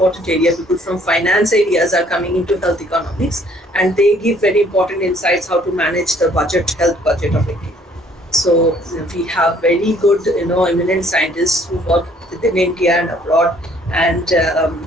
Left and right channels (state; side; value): normal; both; correlation 0.60